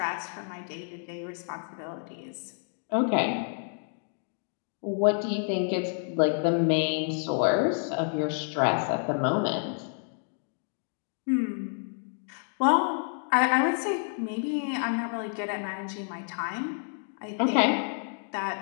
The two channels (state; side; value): silent; right; 58 dB below the other